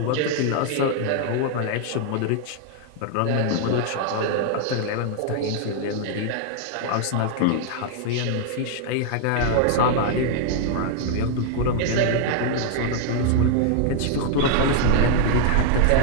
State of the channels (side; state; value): both; different; correlation 0.00